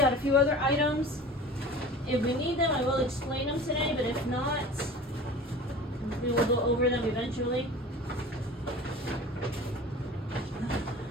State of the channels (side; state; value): both; normal; correlation 0.39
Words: out a few other items. If we need them, I will explain them today, but if not, we will go over them eventually.